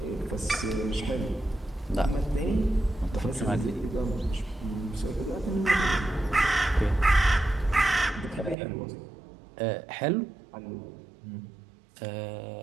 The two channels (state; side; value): drops out; left; at 8.6 s